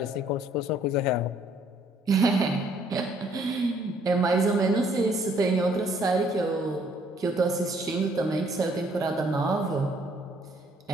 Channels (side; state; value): both; normal; correlation 0.64